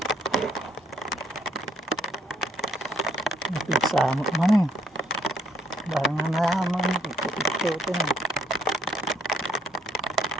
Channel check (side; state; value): both; normal; correlation 0.67